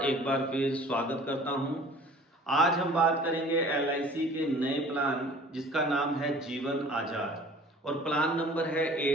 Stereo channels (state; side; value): normal; both; correlation 0.48